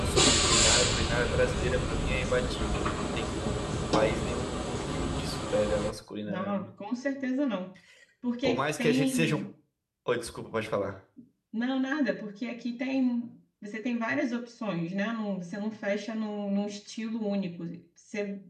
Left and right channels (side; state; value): both; identical; correlation 1.00